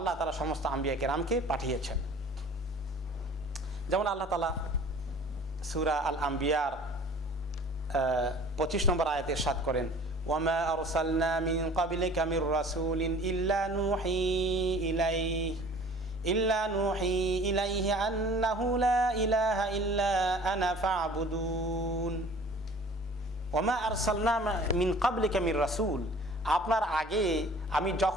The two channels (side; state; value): both; normal; correlation 0.48